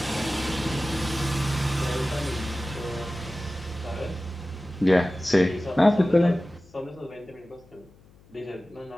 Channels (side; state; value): left; noise; hum, 27 dB below the sound